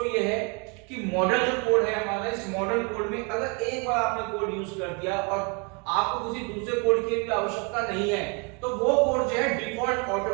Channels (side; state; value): left; quieter; 33.7 dB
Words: ये है कि मॉडल जो कोड है हमारा, इस मॉडल कोड में अगर एक बार आपने कोड यूज कर दिया और आपको किसी दूसरे कोड की भी आवश्यकता नहीं है तो वो कोड जो है डिफॉल्ट